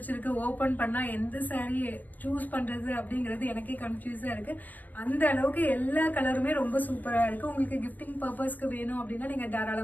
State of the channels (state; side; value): late; right; 0.083 ms